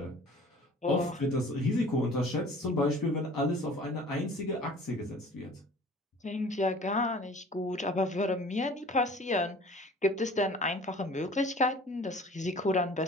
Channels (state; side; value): normal; both; correlation 0.47